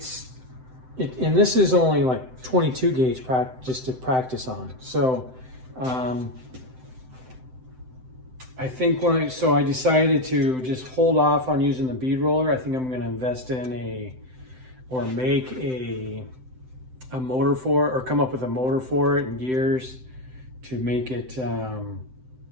this is only like 22 gauge just to practice on. So I think I decided to just hold off on using the bead roller. I think I'm going to invest in make a motor for it, or come up with a motor for it and gears to make it a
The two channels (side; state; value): left; late; 7.8 ms